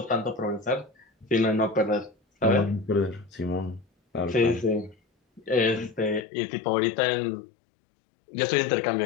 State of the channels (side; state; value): right; drops out; at 6.2 s